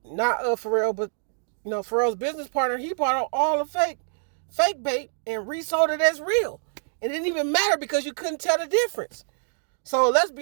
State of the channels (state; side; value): silent; left; digital silence